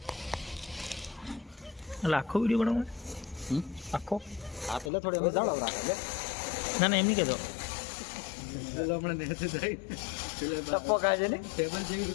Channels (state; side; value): drops out; right; at 4.9 s